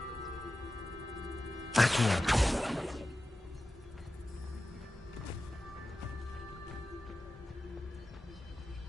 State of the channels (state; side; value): normal; both; correlation 0.93